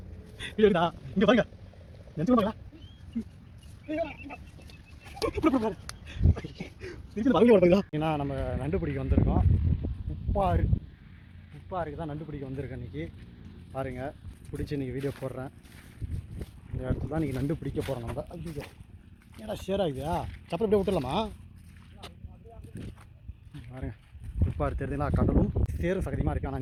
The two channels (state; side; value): identical; both; correlation 1.00